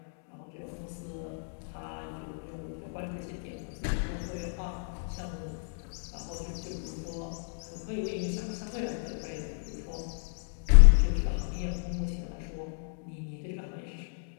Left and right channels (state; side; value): silent; right; digital silence